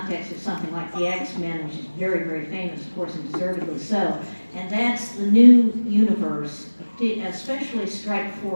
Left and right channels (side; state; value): both; inverted; correlation -1.00